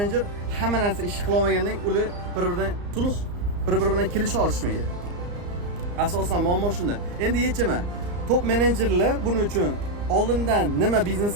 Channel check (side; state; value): left; late; 34 ms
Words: hamma narsa ish qila olmagandan ular bir-biridan sulh, bir-biri bilan kelisha olishmaydi. Asosan muammo shunda. Endi yechimi top menejerlar buning uchun oldindan nima biznes